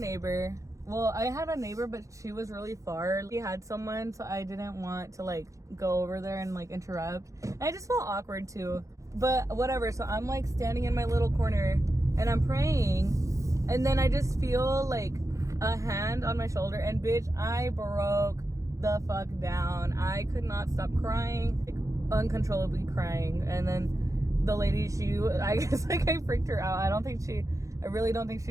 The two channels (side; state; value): left; late; 0.15 ms